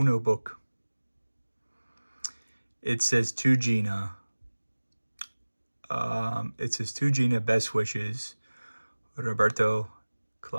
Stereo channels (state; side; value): inverted; both; correlation -1.00